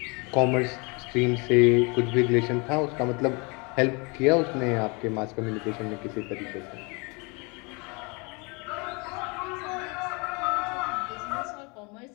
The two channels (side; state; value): right; quieter; 30.0 dB